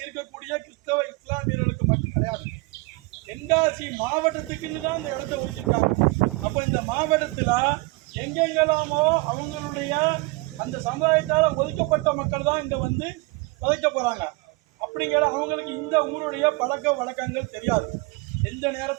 இருக்கக்கூடிய கிறிஸ்தவ இஸ்லாமியர்களுக்கு மட்டும் கிடையாது, தென்காசி மாவட்டத்துக்கு வச்சிருக்காங்க. அப்ப இந்த மாவட்டத்துல எங்கெங்கெல்லாமோ அவங்களுடைய அந்த சமுதாயத்தால ஒதுக்கப்பட்ட மக்கள் தான் இங்க வந்து வதைக்க போறாங்க. அப்படிங்கிற அவங்களுக்கு இந்த ஊருடைய பழக்க வழக்கங்கள் தெரியாது. எந்த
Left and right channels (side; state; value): left; quieter; 24.9 dB